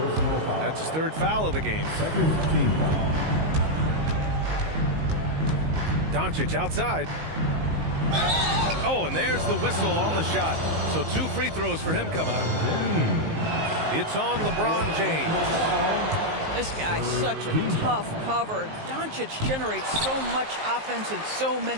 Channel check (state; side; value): late; left; 19 ms